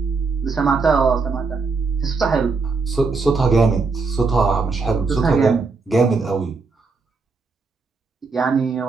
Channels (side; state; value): left; quieter; 4.4 dB